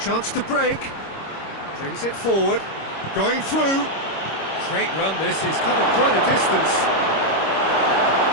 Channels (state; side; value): late; right; 26 ms